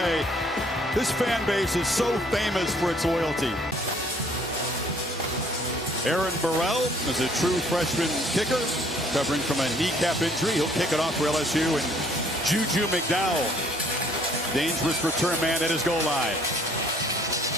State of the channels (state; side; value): normal; both; correlation 0.60